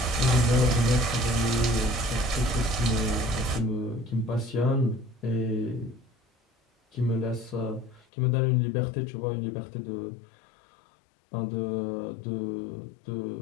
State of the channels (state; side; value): drops out; right; at 8.1 s